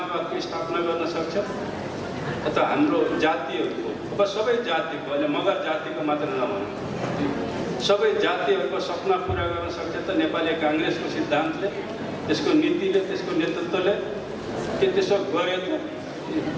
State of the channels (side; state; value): both; identical; correlation 1.00